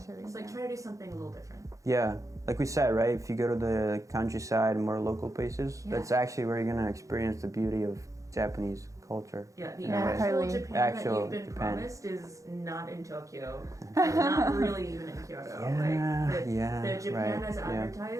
It's like try to do something a little different. Yeah, like we said, right? If you go to the countryside and more local places, that's actually where you're gonna experience the beauty of Japanese culture. Yeah, the in a way. actual Totally. Japan that you've been promised is not in Tokyo, and not really even in Kyoto. The Japan as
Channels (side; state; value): left; late; 0.16 ms